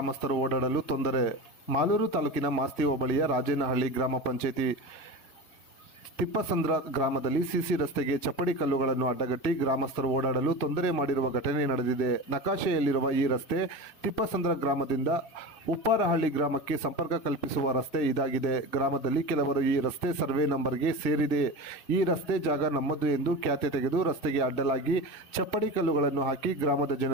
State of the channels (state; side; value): late; right; 2.6 ms